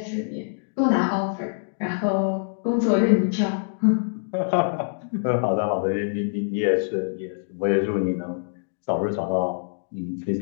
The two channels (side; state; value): right; silent; digital silence